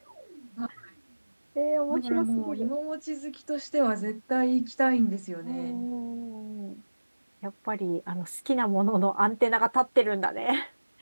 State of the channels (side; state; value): both; inverted; correlation -1.00